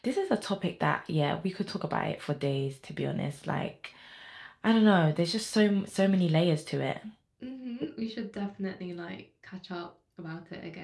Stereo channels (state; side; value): identical; both; correlation 1.00